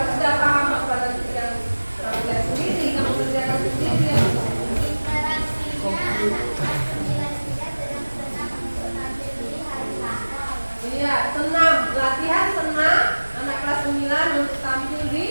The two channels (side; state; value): both; inverted; correlation -1.00